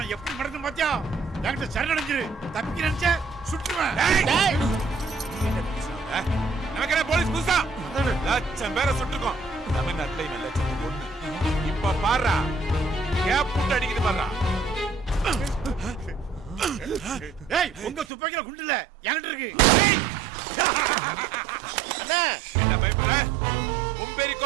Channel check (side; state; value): left; drops out; at 18.1 s